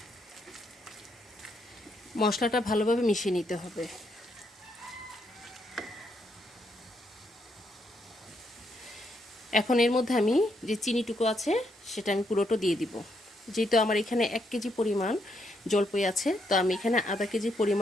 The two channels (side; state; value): both; normal; correlation 0.76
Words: মশলাটা ভালোভাবে মিশিয়ে নিতে হবে। এখন এর মধ্যে আমি যে চিনিটুকু আছে সেটা আমি পুরোটা দিয়ে দিব। যেহেতু আমার এখানে 1 কেজি পরিমাণ জলপাই আছে, তো আমি এখানে আধা কেজি